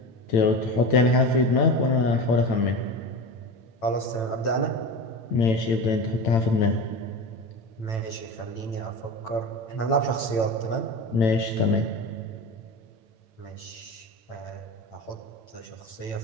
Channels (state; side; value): late; right; 8.9 ms